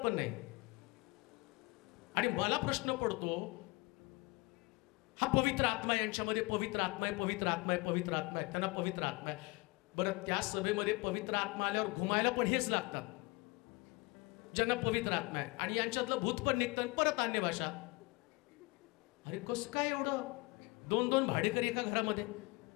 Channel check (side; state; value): right; quieter; 25.3 dB